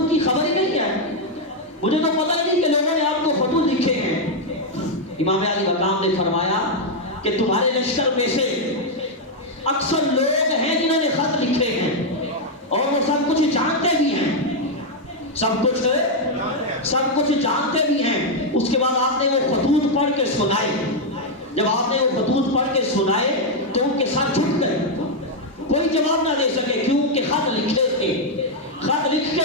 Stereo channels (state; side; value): normal; both; correlation 0.00